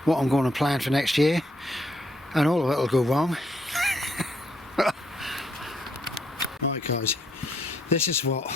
what I'm going to plan for next year. And all of it will go wrong. Right guys, this is what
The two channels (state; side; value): normal; both; correlation 0.73